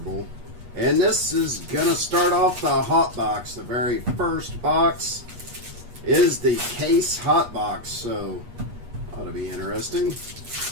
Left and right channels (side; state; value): left; late; 8.4 ms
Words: And this is going to start off the hot box. The very first box is the case hot box. So ought to be interesting.